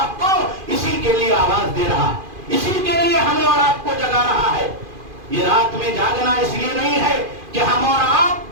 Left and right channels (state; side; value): late; left; 2.5 ms